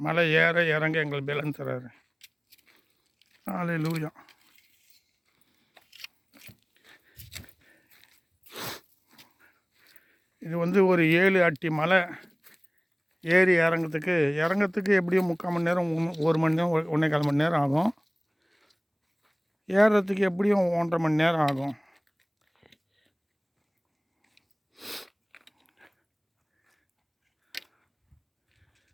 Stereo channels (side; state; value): both; identical; correlation 1.00